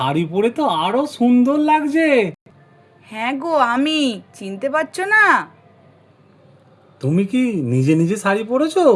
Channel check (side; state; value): both; identical; correlation 1.00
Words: পরে তো আরো সুন্দর লাগছে। হ্যাঁ গো, আমি, চিনতে পারছো না? তুমি কি নিজে নিজে শাড়ি পরেছো?